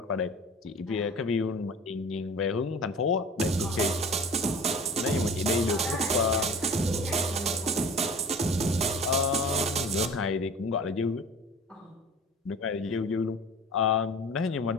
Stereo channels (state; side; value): normal; both; correlation 0.40